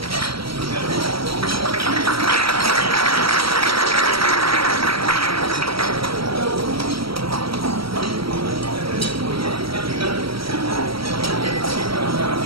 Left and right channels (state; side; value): late; left; 0.75 ms